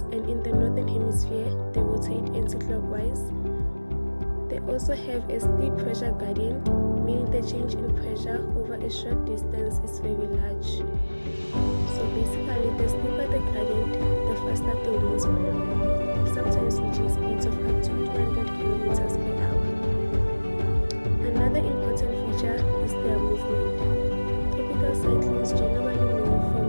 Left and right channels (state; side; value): inverted; both; correlation -1.00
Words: and in the northern hemisphere, they rotate anti-clockwise. They also have a steep pressure gradient, meaning the change in pressure over a short distance is very large. So basically, the steeper the gradient, the faster the winds blow, sometimes reaching speeds of up to 200 kilometers per hour. Another important feature is their movement. Tropical cyclones generally move